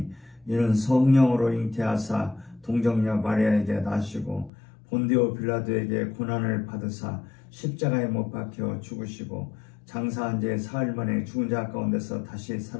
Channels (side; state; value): right; drops out; at 4.5 s